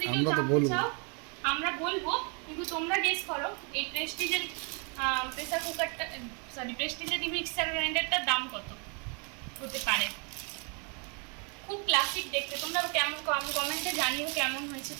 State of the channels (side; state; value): left; quieter; 35.9 dB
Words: আমরা তো জানতে বলবো, চাও আমরা বলবো, কিন্তু তোমরা গেস করো এই প্রেস্টিজের প্রেসার কুকারটা, প্রেস্টিজের মিক্সার গ্রাইন্ডারটার দাম কত হতে পারে। খুব ক্লাসিক দেখতে। তোমরা কেমন কমেন্টে জানিও কেমন হয়েছে,